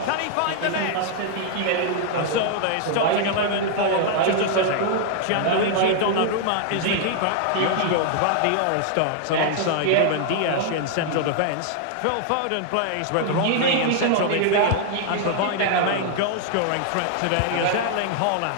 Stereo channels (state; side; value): different; both; correlation 0.00